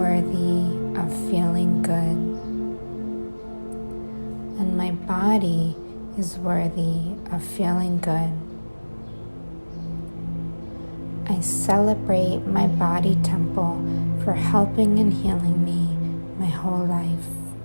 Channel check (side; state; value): both; inverted; correlation -1.00